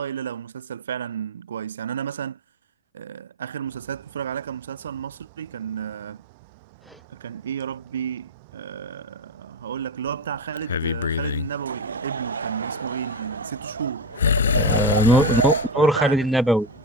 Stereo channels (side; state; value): both; normal; correlation 0.14